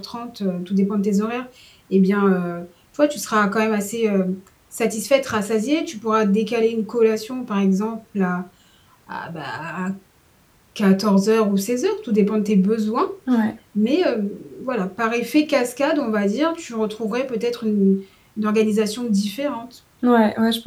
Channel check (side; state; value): both; identical; correlation 1.00